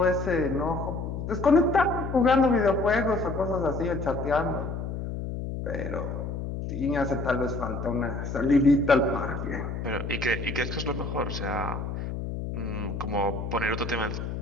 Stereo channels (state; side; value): noise; left; hum, 5 dB below the sound